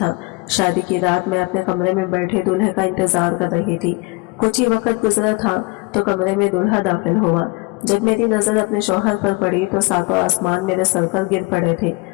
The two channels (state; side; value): quieter; right; 26.3 dB